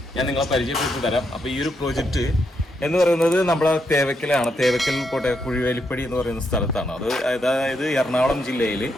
ഞാൻ നിങ്ങളെ പരിചയപ്പെടുത്തി തരാം. അപ്പോൾ ഈ ഒരു പ്രോജക്റ്റ് എന്ന് പറയുന്നത് നമ്മുടെ തേവക്കലാണ്. തേവക്കൽ കുഴിവേലിപ്പടി എന്ന് പറയുന്ന സ്ഥലത്താണ്. അതായത് എറണാകുളം ജില്ലയിൽ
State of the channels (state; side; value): normal; both; correlation 0.80